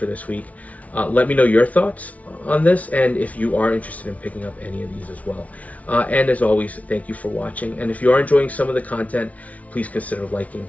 this week. Let me know your thoughts on this, and if you are interested in picking up any of these as well. And as always, thank you for watching. And if you are enjoying some of the content, please consider liking,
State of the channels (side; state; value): right; late; 0.069 ms